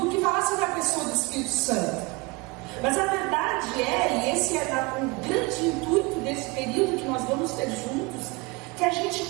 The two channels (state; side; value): quieter; left; 26.0 dB